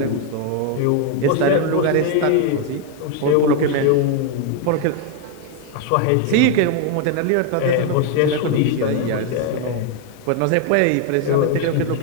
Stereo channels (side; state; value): both; different; correlation 0.01